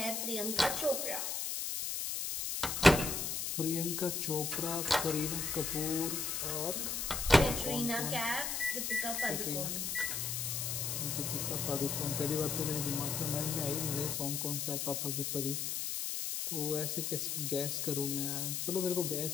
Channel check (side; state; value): left; noise; hiss, 1 dB below the sound